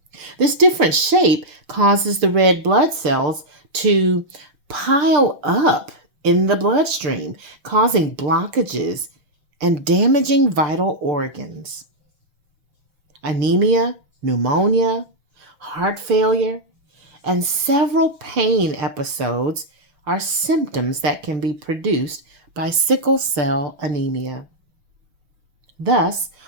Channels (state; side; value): late; left; 6.3 ms